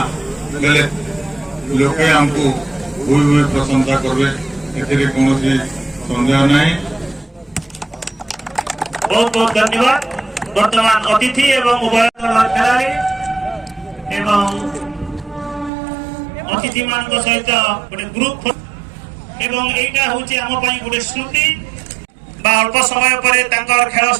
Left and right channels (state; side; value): drops out; left; at 15.7 s